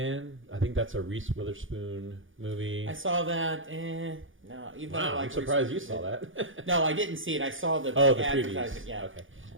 I think that's a Reese Witherspoon movie. I saw that. No, even though I Wow, like I'm surprised you Reese saw that. Witherspoon. No, I didn't see it. I saw the Oh, the advertising. previews. Yeah. Okay.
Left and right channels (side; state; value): left; late; 0.58 ms